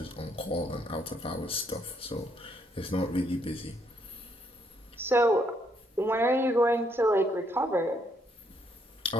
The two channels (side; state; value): both; normal; correlation 0.72